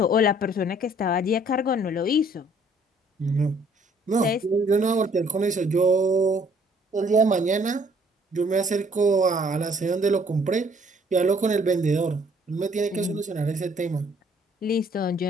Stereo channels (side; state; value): both; normal; correlation 0.61